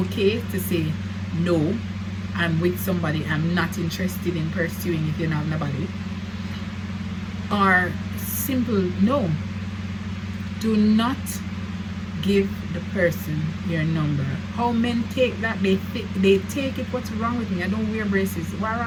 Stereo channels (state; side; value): identical; both; correlation 1.00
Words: to say, no, I'm with somebody I'm not interested in pursuing if you don't have nobody. Or simple no. Do not give the person your number. How men take that? They take it, what's wrong with me? I don't wear braces. What's